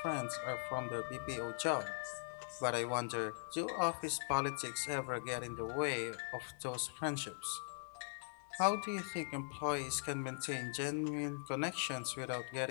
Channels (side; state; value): right; silent; digital silence